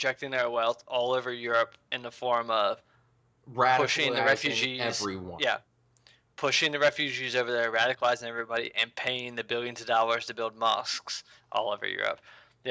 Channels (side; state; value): both; identical; correlation 1.00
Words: their wealth all over Europe in the form of pushing the refugees. Everyone. Yeah. Pushing the refugees over there, radicalizing everybody, and paying the billions of dollars to build mosques all over Europe.